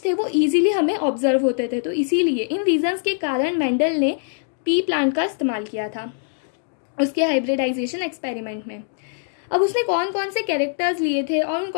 थे वो ईजिली हमें ऑब्जर्व होते थे। तो इसीलिए इन रीजंस के कारण मेंडल ने पी प्लांट का इस्तेमाल किया था उसके हाइब्रिडाइजेशन एक्सपेरिमेंट में। अब उसने कौन कौन से कैरेक्टर्स लिए थे और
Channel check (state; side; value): silent; right; digital silence